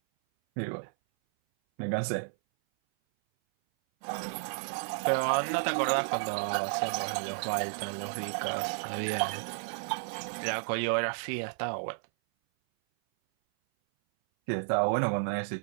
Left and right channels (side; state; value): left; silent; 56 dB below the other